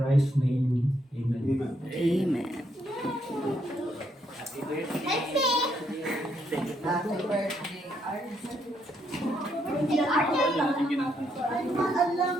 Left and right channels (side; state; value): both; normal; correlation 0.74